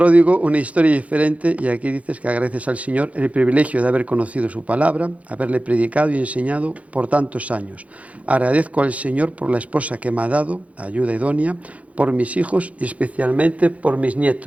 una historia diferente, y aquí dices que agradeces al Señor el privilegio de haber conocido su palabra, haberle predicado y enseñado por tantos años. Agradezco al Señor por la esposa que me ha dado, ayuda idónea, por mis hijos y especialmente por mis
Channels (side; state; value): left; late; 0.066 ms